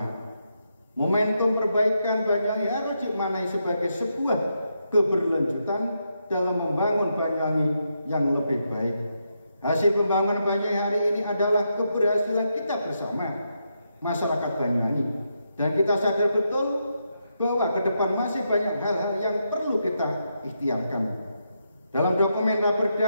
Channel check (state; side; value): inverted; both; correlation -0.82